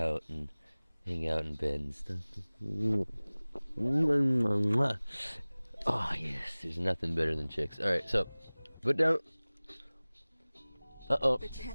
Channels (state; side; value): inverted; both; correlation -1.00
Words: and hang out in bed and stuff. Oh, yes, there's nothing better than chicks. Alright, so, put down. Uh-oh. They